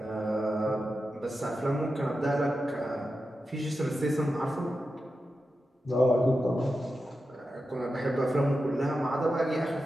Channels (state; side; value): normal; both; correlation 0.90